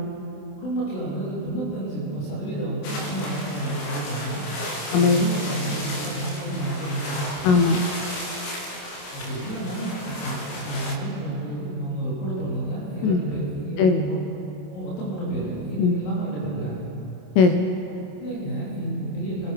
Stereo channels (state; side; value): late; right; 27 ms